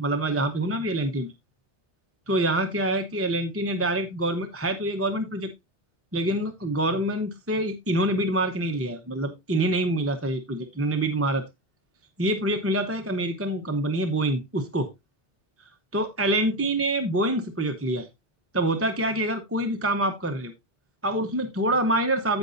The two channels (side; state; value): both; normal; correlation 0.16